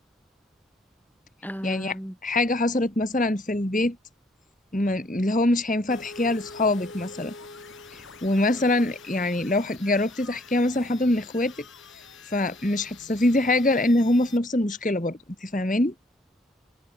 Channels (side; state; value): both; normal; correlation 0.64